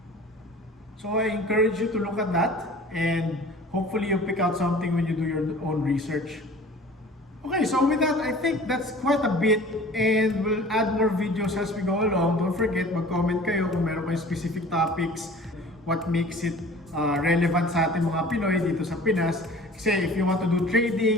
So I encourage you to look at that, and hopefully you pick out something when you do your own research. Okay, so with that, I think that's quite a bit, and we'll add more videos as we go along. Don't forget, mag-comment kayo kung meron kayong specific topics, what makes it relevant sa ating mga Pinoy dito sa Pinas. Kasi if you want to do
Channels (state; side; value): normal; both; correlation 0.45